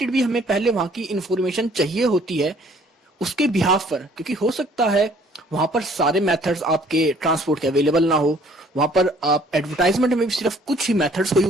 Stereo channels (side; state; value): both; normal; correlation 0.58